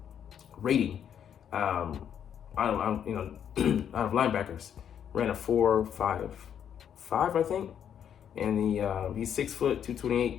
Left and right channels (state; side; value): quieter; right; 8.9 dB